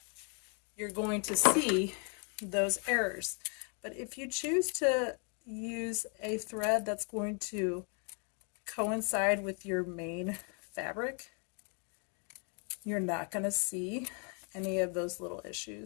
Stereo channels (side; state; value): right; quieter; 38.6 dB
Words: you're going to see those errors. But if you choose to use a thread that's going to coincide with your main fabric, you're not going to see any of those little